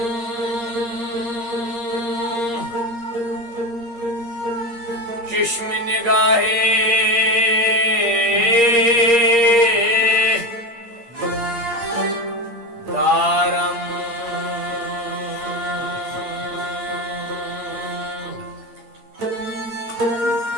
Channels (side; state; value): left; late; 8.6 ms